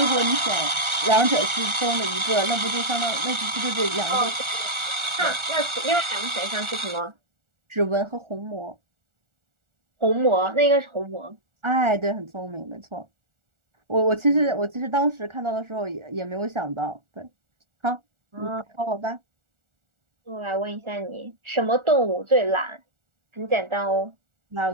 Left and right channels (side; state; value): left; late; 1.4 ms